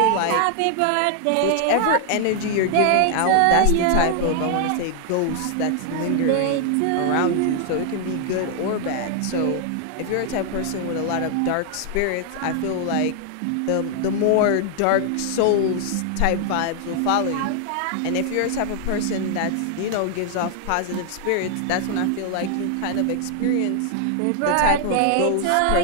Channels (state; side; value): different; both; correlation 0.00